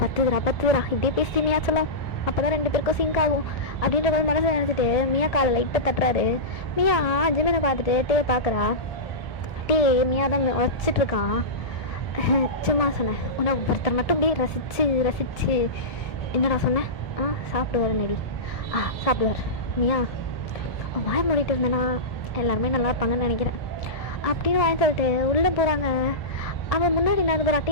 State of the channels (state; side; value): late; right; 1.7 ms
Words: பத்துதுரா இப்படியே பேசி மியா சொல்லும். அப்போ தான் 2 பேருக்கும் சிங்க் ஆகும் அப்படின்ற மாதிரி மனசை நினச்சிட்டு மியா காலை லைட்டாக தட்டுறாரு. மியா ஜிமினை பார்த்துட்டு பார்க்குறா. மியா தான் வச்சிட்ருக்கான். சும்மா சொன்னேன், உன்னை ஒருத்தர் மட்டும் அப்படியே ரசிச்சு என்னடா சொன்னேன்? சாப்பிடுவார் நடி. சாப்பிடுவார். மியா வாய் மூடிட்டு இருந்தேன்னா எல்லாருமே நல்லா இருப்பாங்கன்னு நினைக்கிறேன் அப்படின்னு வாங்கி சொல்லிட்டு உள்ளே போகிறாங்க. அவன் முன்னாடி நடந்து போகிற